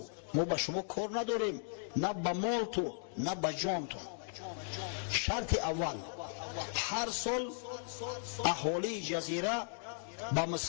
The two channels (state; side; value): silent; right; digital silence